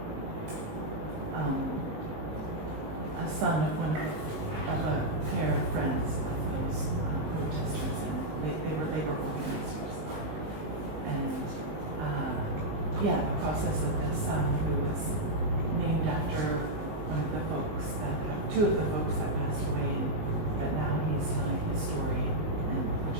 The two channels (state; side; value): late; left; 19 ms